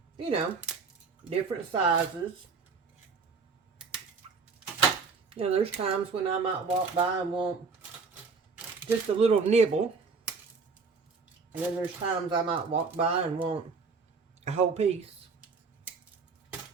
you know, different sizes. You know, there's times when I might walk by and want just a little nibble. And then there's times I might walk by and want a whole piece.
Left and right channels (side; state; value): left; quieter; 4.8 dB